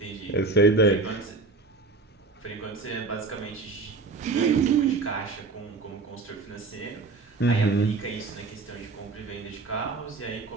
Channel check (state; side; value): quieter; left; 3.9 dB